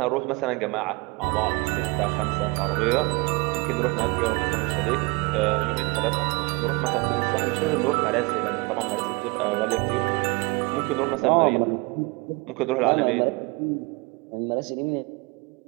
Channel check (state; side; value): quieter; left; 26.3 dB